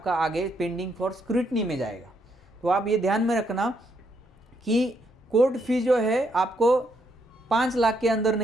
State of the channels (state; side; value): normal; both; correlation 0.75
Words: आगे पेंडिंग फॉर स्क्रूटनी में जाएगा। तो आप ये ध्यान में रखना कि कोर्ट फी जो है आपको 5 लाख के अंदर